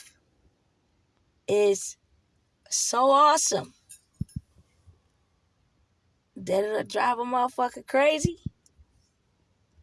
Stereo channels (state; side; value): identical; both; correlation 1.00